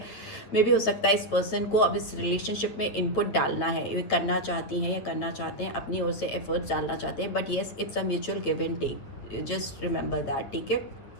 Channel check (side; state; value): right; late; 9.3 ms